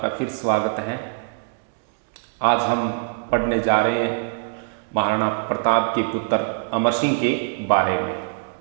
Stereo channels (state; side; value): silent; left; 64 dB below the other